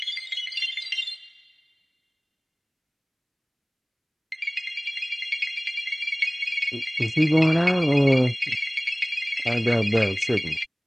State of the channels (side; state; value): both; identical; correlation 1.00